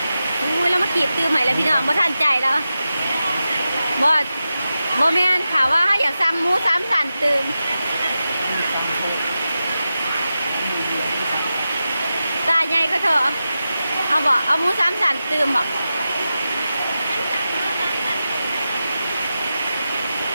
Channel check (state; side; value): inverted; both; correlation -0.92